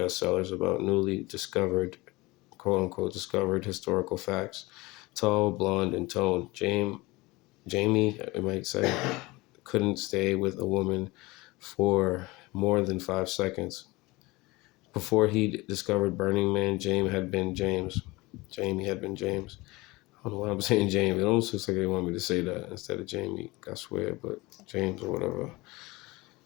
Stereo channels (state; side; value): quieter; right; 22.2 dB